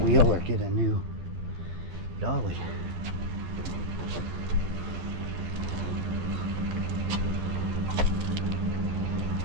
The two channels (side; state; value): left; late; 12 ms